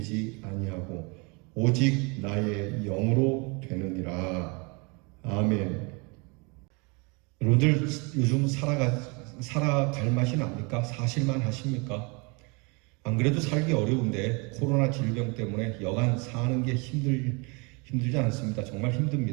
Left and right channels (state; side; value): quieter; left; 30.4 dB